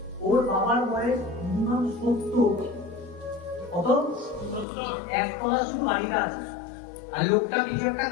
ওর বাবার বয়স মিনিমাম 70, কত? 1 তলা শুধু বাড়িটা আছে, আর লোকটা কিছু একটা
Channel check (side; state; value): right; drops out; at 4.7 s